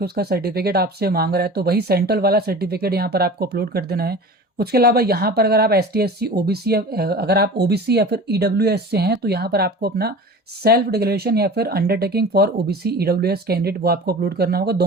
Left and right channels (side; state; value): both; normal; correlation 0.37